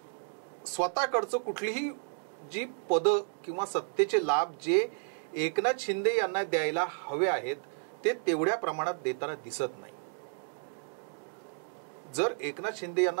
स्वतःकडचं कुठलीही जी पदं किंवा सत्तेचे लाभ जे एकनाथ शिंदे यांना द्यायला हवे आहेत ते तेवढ्या प्रमाणात देताना दिसत नाही. जर एकनाथ शिंदे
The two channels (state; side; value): silent; left; digital silence